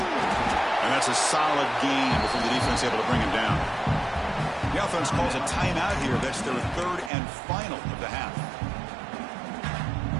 that's a solid gain before the defense able to bring him down. The offense calls a timeout here. That's their third and final of the half.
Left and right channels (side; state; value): left; drops out; at 7.1 s